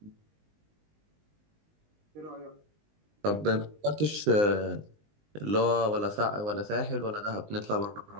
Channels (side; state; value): left; late; 19 ms